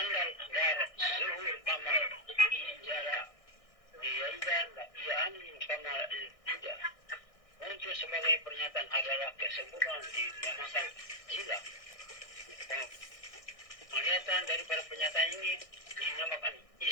dan dar suhul kamal ijara diaidan ianin kamal tidak muncul sebagai pernyataan adalah kesempurnaan dinamakan jila. Pernyataan daripada pernyataan ini dinamakan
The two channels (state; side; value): late; right; 1.6 ms